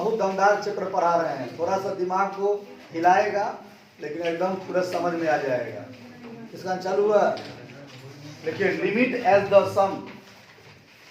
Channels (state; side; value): identical; both; correlation 1.00